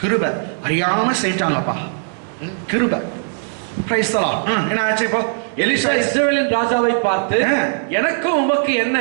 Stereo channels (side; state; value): left; silent; digital silence